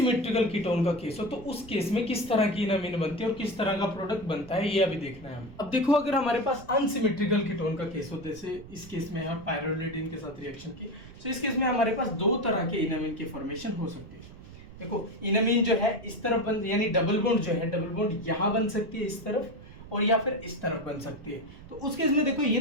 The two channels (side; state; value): right; noise; rumble, 17 dB below the sound